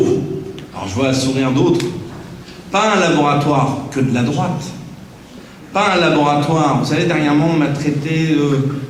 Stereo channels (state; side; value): identical; both; correlation 1.00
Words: alors je vois un sourire d'autres. Pas un laboratoire que de la droite. Pas un laboratoire. Vous savez, dernièrement, on m'a traité